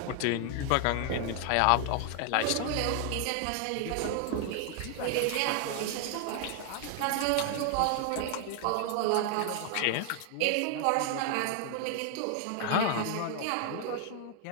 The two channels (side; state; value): both; different; correlation 0.00